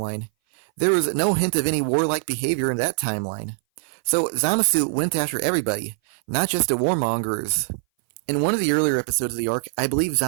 There was no hint of any warlike behavior in that timeline. So Zamasu went after everybody, not just the warmongers. In one of the earlier episodes of the arc, I believe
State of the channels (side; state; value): left; silent; 60 dB below the other